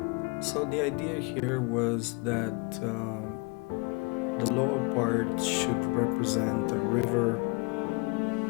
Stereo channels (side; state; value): right; quieter; 30.8 dB